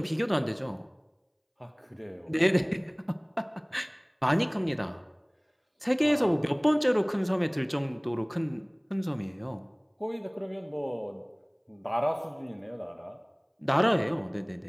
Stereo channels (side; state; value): both; identical; correlation 1.00